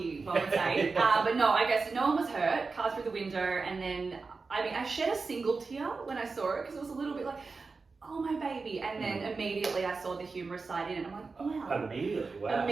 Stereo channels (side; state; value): left; quieter; 4.3 dB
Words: one would say. But no, I guess no one was hurt. Car through the window, and then I shed a single tear when I saw it because it was a little bit like, oh my baby, and then immediately I saw the humorous side in it, and I'm like, wow. Immediately, wow.